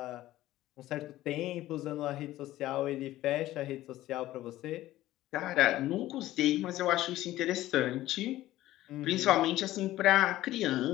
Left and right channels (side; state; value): right; quieter; 15.4 dB